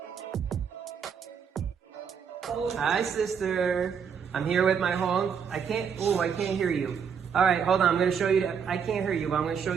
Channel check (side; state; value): left; quieter; 6.9 dB